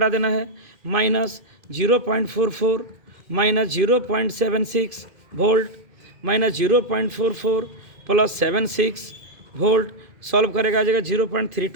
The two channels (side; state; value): left; late; 2.5 ms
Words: देना है, minus 0.44 minus 0.76 volt minus 0.44 plus 76 volt, solve करेगा आ जाएगा